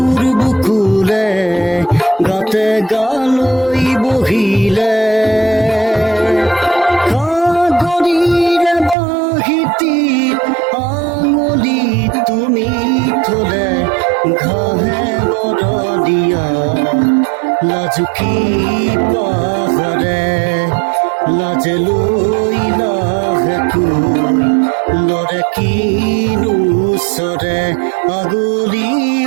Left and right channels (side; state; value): left; drops out; at 9.0 s